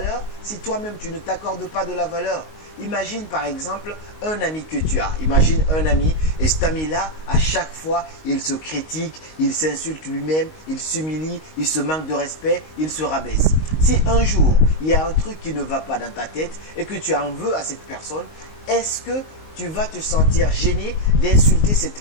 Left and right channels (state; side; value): late; right; 19 ms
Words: si toi-même tu ne t'accordes pas de la valeur? Imagine par exemple un ami que tu as. Imagine un ami et cet ami-là, à chaque fois, il se critique, il s'insulte lui-même, il s'humilie, il se manque de respect, il se rabaisse. Si un jour, il y a un truc qui ne va pas dans ta tête et que tu en veux à cette personne, est-ce que tu vas te sentir gêné d'insulter cette